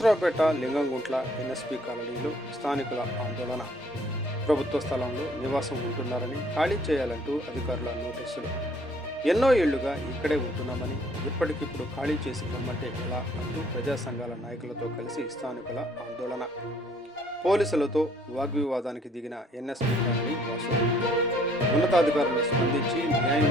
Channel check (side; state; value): both; normal; correlation 0.61